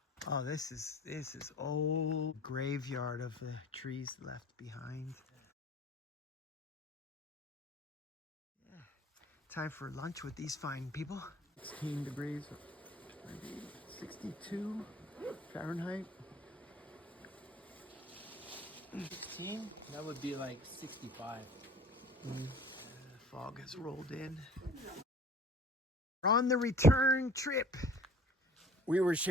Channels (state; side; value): normal; both; correlation 0.47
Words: Oh, this is old graveyard of the trees left behind. Yeah. Time for lunch with these fine people. 16 degrees, 62 Fahrenheit. 16? That would be like 65. Fog has rolled in. We're on the return trip. We were